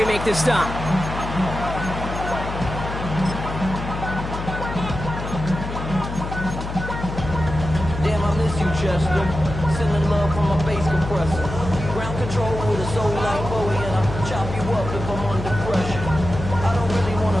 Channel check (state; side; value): noise; left; hum, 6 dB below the sound